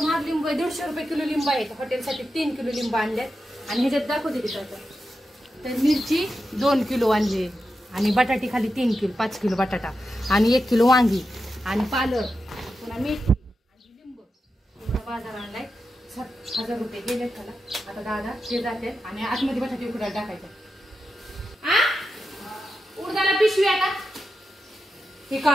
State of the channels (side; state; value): both; normal; correlation 0.89